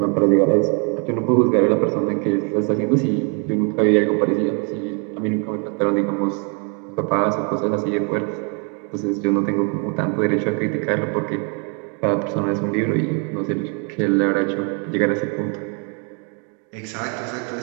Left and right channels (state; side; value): quieter; left; 38.1 dB